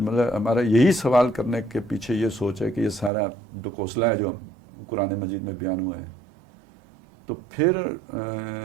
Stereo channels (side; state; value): left; drops out; at 3.1 s